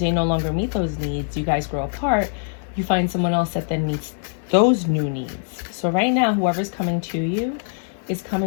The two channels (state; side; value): silent; right; 58 dB below the other